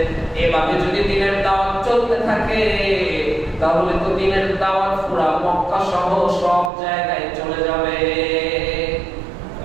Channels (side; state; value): left; drops out; at 6.7 s